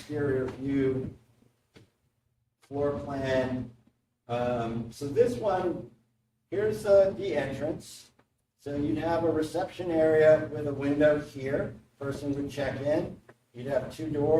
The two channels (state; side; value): identical; both; correlation 1.00